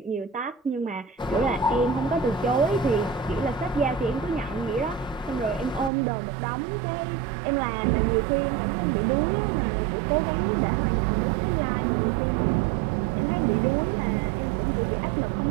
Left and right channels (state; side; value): drops out; left; at 5.9 s